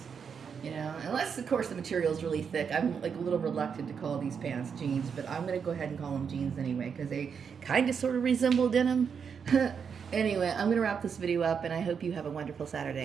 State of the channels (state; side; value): quieter; left; 6.6 dB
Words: You know, unless of course the material is really thick. I'm like a little reluctant to call these pants jeans, but I'm gonna go ahead and call them jeans anyway because they kind of sort of resemble denim. Anyway, I'm gonna wrap this video up, and I hope you have a wonderful